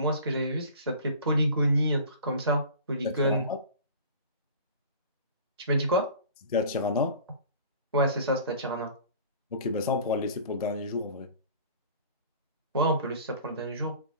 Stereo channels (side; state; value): both; inverted; correlation -0.43